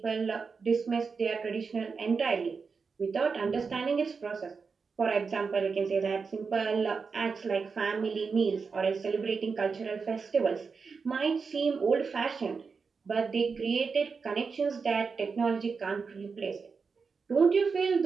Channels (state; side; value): quieter; left; 5.1 dB